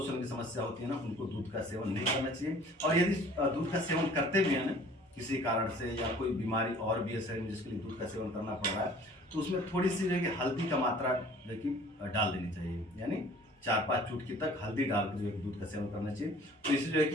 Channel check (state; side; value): normal; both; correlation 0.50